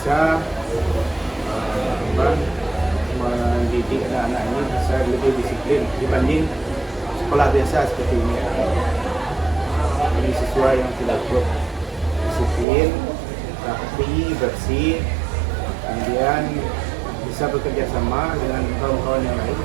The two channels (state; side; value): drops out; left; at 12.7 s